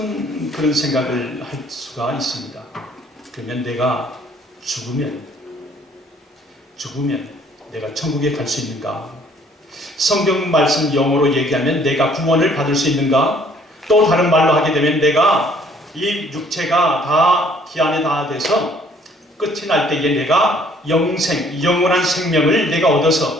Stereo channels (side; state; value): both; normal; correlation 0.60